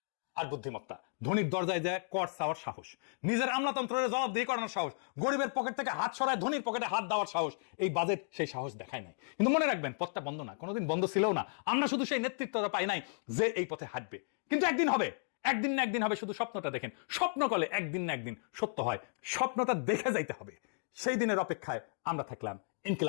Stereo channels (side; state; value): right; silent; digital silence